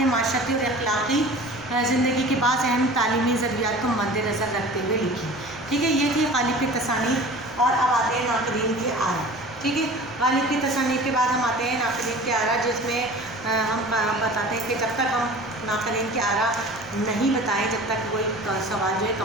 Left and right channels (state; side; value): noise; right; rumble, 23 dB below the sound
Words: معاشرتی اور اخلاقی زندگی کے بعض اہم تعلیمی ضروریات کو مد نظر رکھتے ہوئے لکھی. ٹھیک ہے. یہ تھی غالب کی تصانیف. اور اب آتے ہیں ناقدین کی آرا. ٹھیک ہے. غالب کی تصانیف کے بعد ہم آتے ہیں ناقدین کی آرا جس میں ہم بتاتے ہیں کہ جب تک ہم ناقدین کی آرا نہیں بتائیں جب تک کوئی سوال جو ہے